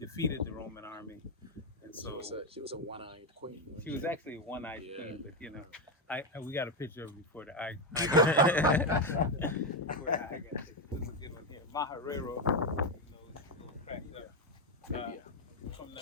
the Roman army. And And so She was a one-eyed queen. she was actually a one-eyed Yeah. queen, but you know, we got a picture of her before the eye. Before the eye got taken. This is a good one here. Maharero, you know, it's a little cracked up. From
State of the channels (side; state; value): both; normal; correlation 0.08